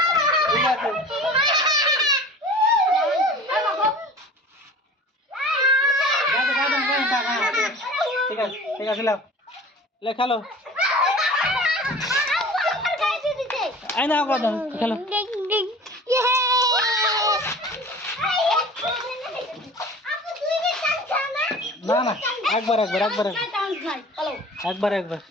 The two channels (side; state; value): both; normal; correlation 0.42